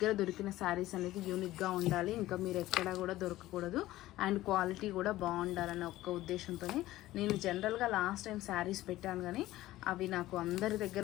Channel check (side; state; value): right; quieter; 16.1 dB